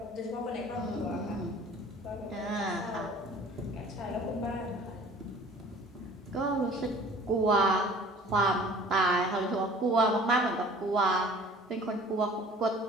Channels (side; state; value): both; normal; correlation 0.48